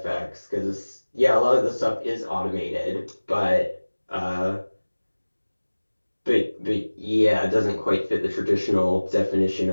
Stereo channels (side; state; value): both; inverted; correlation -1.00